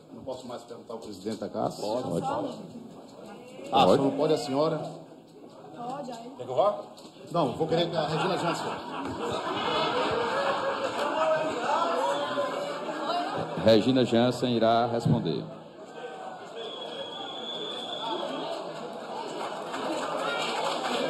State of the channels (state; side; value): identical; both; correlation 1.00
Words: Não posso mais perguntar ao presidente da Caassi? Pode. Ah, só não pode a senhora? Pode, aí. Quer que eu vá? Não, vou querer que a Regina Jansen. Regina Jansen irá responder.